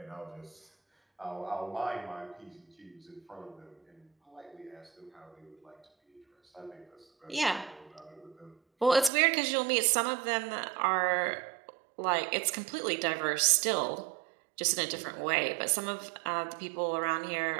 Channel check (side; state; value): left; drops out; at 9.1 s